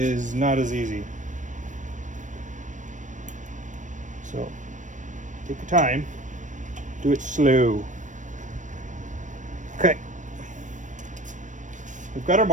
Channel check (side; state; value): left; late; 0.37 ms